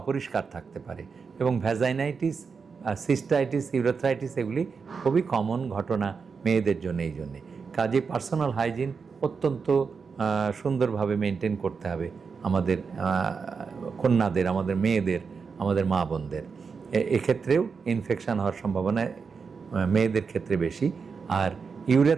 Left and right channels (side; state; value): left; quieter; 5.4 dB